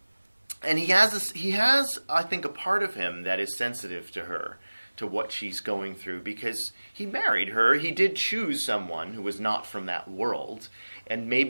he has, I think, a part of him that is sensitive to her, to what she's going through, because he married her. He did choose someone who was not from that world, and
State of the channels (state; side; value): inverted; both; correlation -1.00